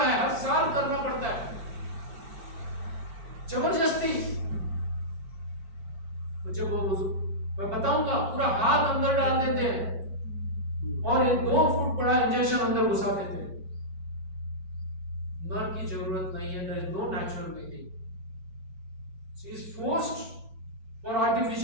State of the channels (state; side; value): late; left; 4.5 ms